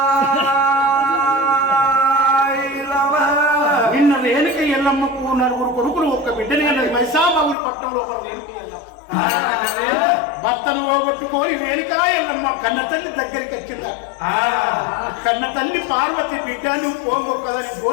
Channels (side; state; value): right; drops out; at 7.6 s